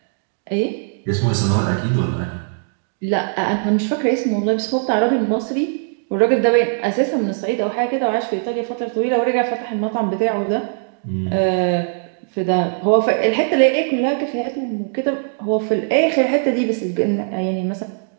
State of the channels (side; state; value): left; silent; digital silence